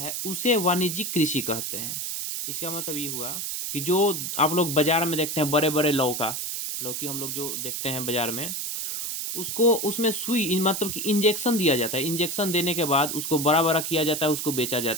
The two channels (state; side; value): noise; right; hiss, 3 dB below the sound